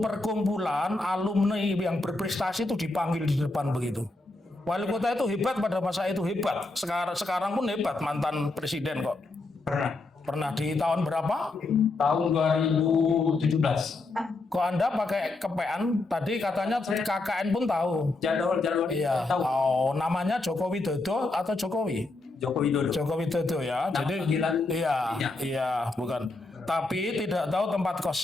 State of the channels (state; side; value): quieter; right; 3.2 dB